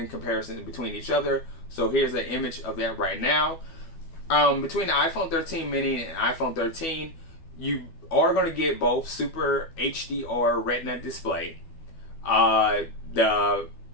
comparison between each other. So here's an image of that right now. Between the iPhone 13 mini and iPhone 13, you are going to get both Super HDR Retina display. The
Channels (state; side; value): late; right; 12 ms